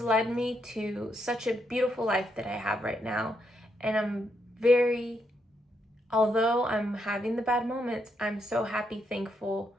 led me to such a beautiful life that I have right now. And although I'm having the bad moments, I'm so happy, thankful,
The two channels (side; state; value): both; normal; correlation 0.79